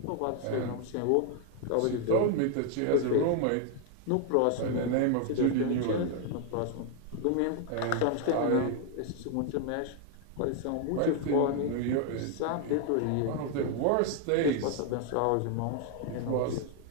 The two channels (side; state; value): both; different; correlation 0.00